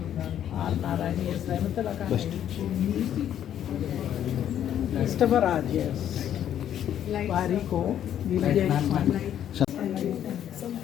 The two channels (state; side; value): quieter; right; 10.3 dB